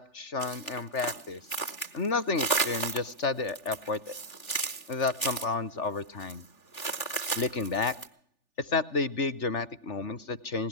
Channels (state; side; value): late; right; 3.4 ms